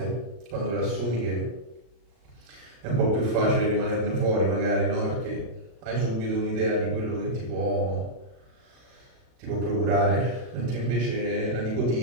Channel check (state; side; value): late; left; 33 ms